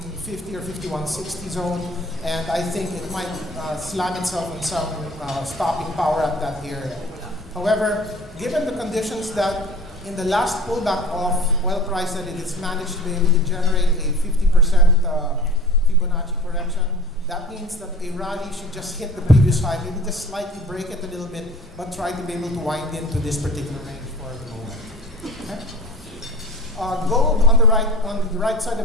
or 5160 zone, and I think it might slam itself on some stopping power at that area. However, given the conditions that in the last pullback of oil price that it has managed to be able to generate a 50% Fibonacci correction, that means that a rally should just hit the previous high, maybe just slightly break it a little bit, but try to be able to wind into this particular range for the moment. Okay? Gold on the right side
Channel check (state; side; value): normal; both; correlation 0.41